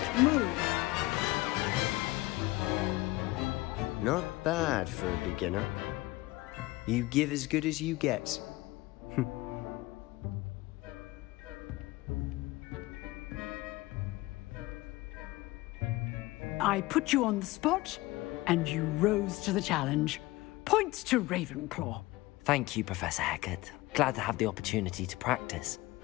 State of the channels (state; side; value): quieter; right; 19.7 dB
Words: move. Not bad for a beginner. You give as good as you get. I put you on the spot, and you rose to the challenge. Points to Ravenclaw. Thank you, Professor Hecat. Glad to have the opportunity to practice.